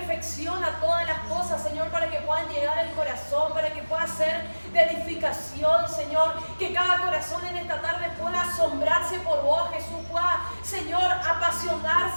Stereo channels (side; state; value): both; inverted; correlation -1.00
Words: todas las cosas, Señor, para que puedan llegar al corazón, para que pueda ser de edificación, Señor, que cada corazón en esta tarde pueda asombrarse por vos, Jesús, pueda, Señor,